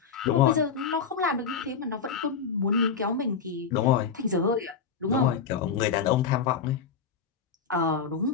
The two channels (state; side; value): quieter; right; 6.2 dB